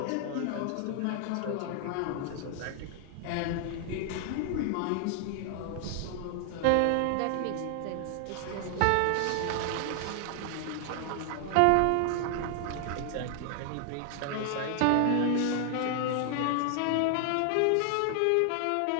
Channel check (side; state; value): both; different; correlation 0.00